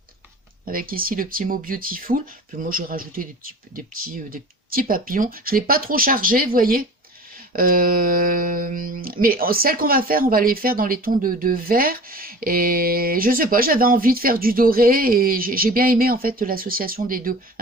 Avec ici le petit mot Beautiful. Puis moi, j'ai rajouté des petits papillons. Je ne l'ai pas trop chargé, vous voyez. Mais celles qu'on va faire, on va les faire dans les tons de vert. Et je sais pas, j'avais envie de faire du doré et j'ai bien aimé en fait l'association des deux,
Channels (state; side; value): normal; both; correlation 0.40